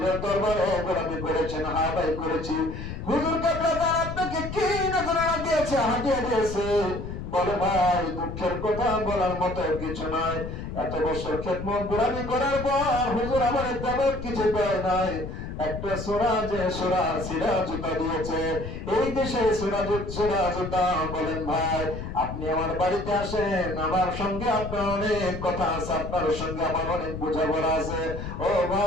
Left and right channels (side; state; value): left; noise; rumble, 7 dB below the sound